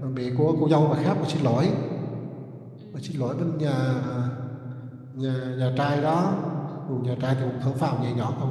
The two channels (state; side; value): identical; both; correlation 1.00